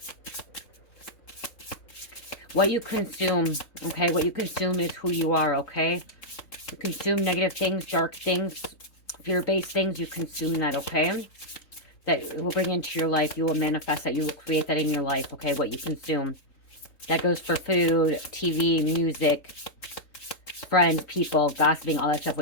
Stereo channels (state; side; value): late; right; 3.9 ms